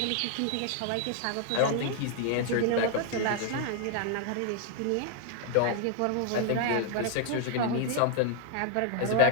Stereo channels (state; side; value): different; both; correlation 0.00